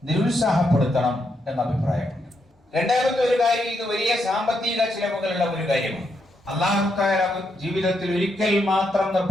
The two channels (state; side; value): normal; both; correlation 0.80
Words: നിരുത്സാഹപ്പെടുത്തണം എന്ന അഭിപ്രായമുണ്ട്. രണ്ടാമത്തെ ഒരു കാര്യം, ഇത് വലിയ സാമ്പത്തിക ചിലവുകളുള്ള ഒരു കാര്യമാണ്. അല്ലാഹു തആല ജീവിതത്തിൽ ഒരിക്കൽ മാത്രം